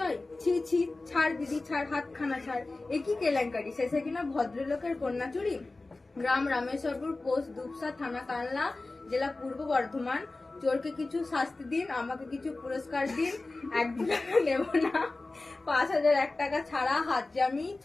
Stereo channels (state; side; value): quieter; right; 3.2 dB